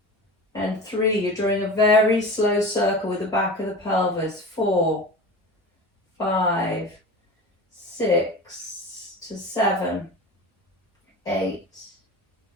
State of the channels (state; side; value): normal; both; correlation 0.33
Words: and 3. You're drawing a very slow circle with the back of the pelvis. 4, 5, 6 to 7, 8,